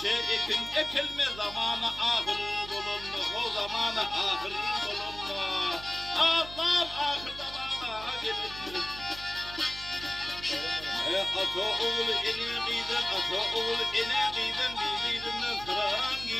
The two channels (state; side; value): noise; right; hum, 14 dB below the sound